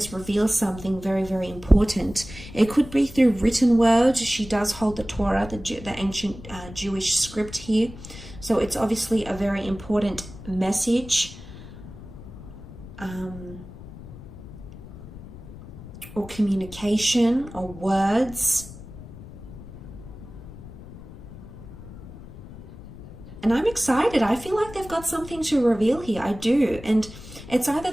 reveals something very, very important. It could be through written words. She does hold the Torah, the ancient Jewish script here, so it's obviously a very important message, or communication, or words. And I'm excited. I feel like they've got something to reveal here. I do. And it's either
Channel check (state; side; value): noise; left; rumble, 15 dB below the sound